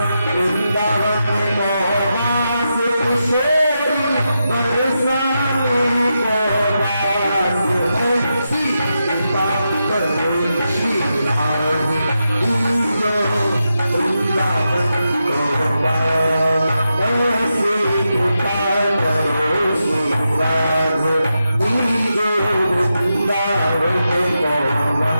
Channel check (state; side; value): inverted; both; correlation -0.87